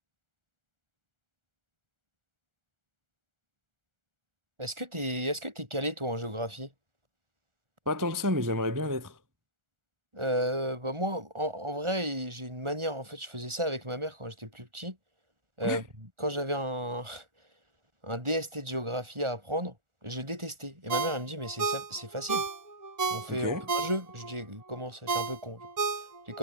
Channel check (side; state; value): left; late; 1.4 ms